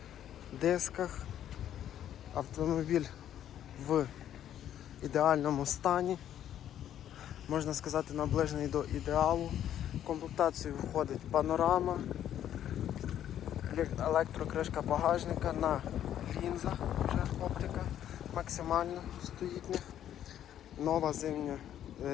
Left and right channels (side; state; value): right; quieter; 10.8 dB